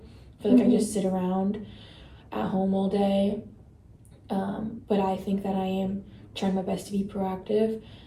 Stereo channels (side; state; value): both; identical; correlation 1.00